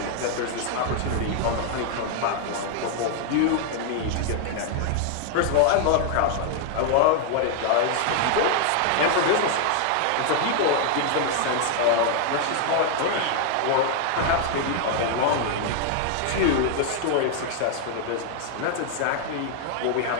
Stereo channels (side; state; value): both; different; correlation 0.00